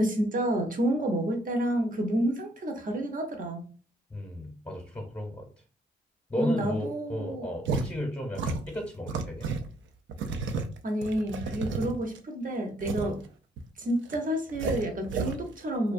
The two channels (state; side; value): normal; both; correlation 0.67